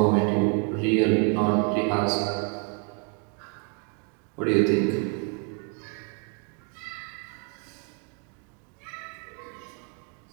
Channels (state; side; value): quieter; left; 39.5 dB